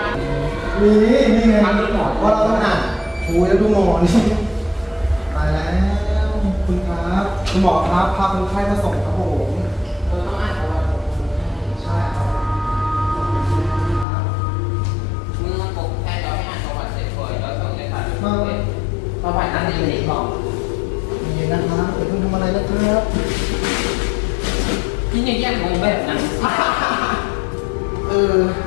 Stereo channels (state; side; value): drops out; right; at 14.1 s